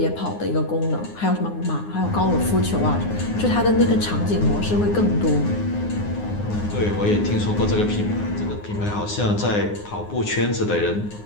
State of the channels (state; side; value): late; right; 9.6 ms